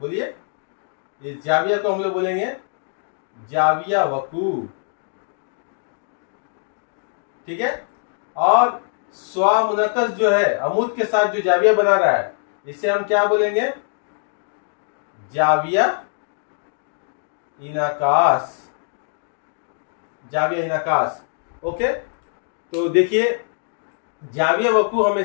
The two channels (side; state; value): right; silent; 64 dB below the other